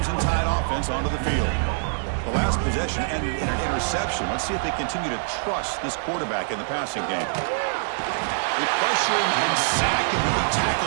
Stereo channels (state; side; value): silent; left; digital silence